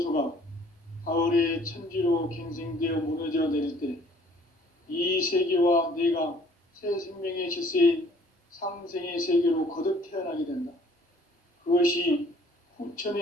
가을의 천지로 갱생되어 무너져 내릴 때 이 세계와 내가 새 생명의 질서인 상생의 세계로 거듭 태어나게 된다. 그것이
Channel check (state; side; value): normal; both; correlation 0.57